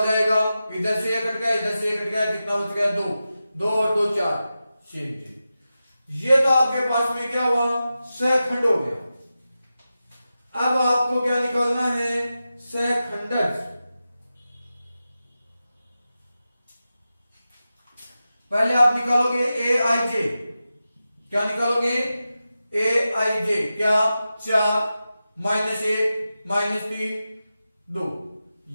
जाएगा? इधर से ये कट गया, इधर से ये कट गया, कितना बच गया? 2। 2 और 2 4। ये तो आपके पास में क्या हुआ? सैखंड हो गया। अब आपको क्या निकालना है? सैखंडज। पहले आप निकालोगे ए आई जे। क्या निकालोगे? ए आई जे। क्या? 4 -1 -3 2।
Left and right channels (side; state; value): both; inverted; correlation -0.92